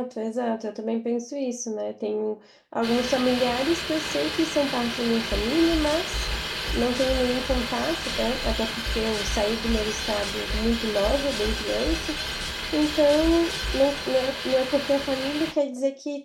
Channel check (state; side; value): identical; both; correlation 1.00